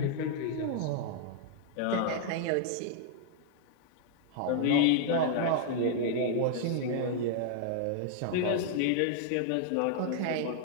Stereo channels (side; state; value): both; different; correlation -0.01